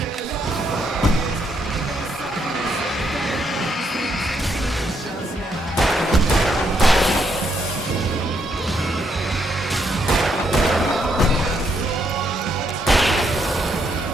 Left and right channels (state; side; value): normal; both; correlation 0.75